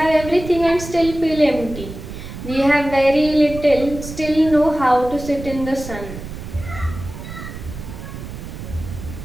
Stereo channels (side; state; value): right; noise; rumble, 11 dB below the sound